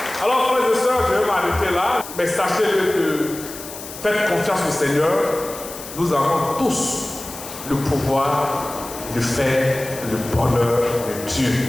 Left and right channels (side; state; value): left; noise; hiss, 12 dB below the sound